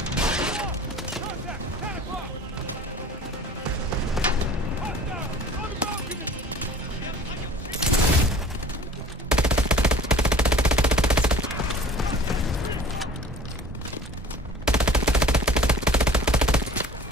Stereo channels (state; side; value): normal; both; correlation 0.46